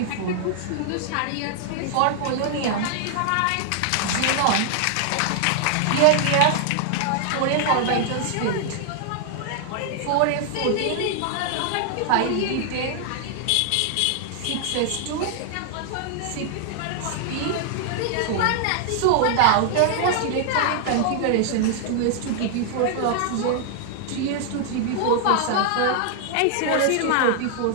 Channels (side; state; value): both; different; correlation 0.00